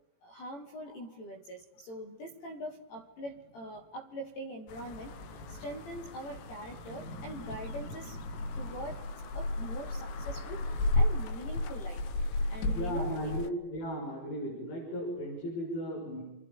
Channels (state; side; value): late; right; 18 ms